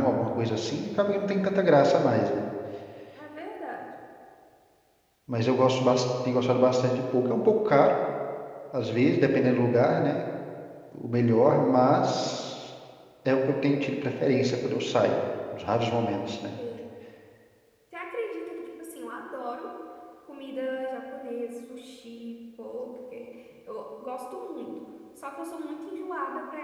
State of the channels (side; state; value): both; identical; correlation 1.00